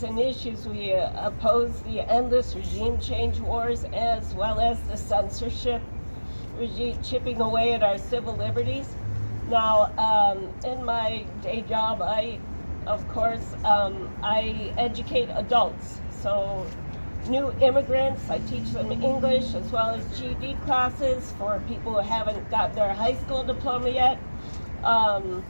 and issues, we oppose the endless regime change wars, as well as the censorship regime chipping away at our civil liberties. Now, in my day job, I educate adults. So new immigrants, I teach them English as well as GED classes for people who haven't got their high school diploma yet.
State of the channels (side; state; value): both; inverted; correlation -1.00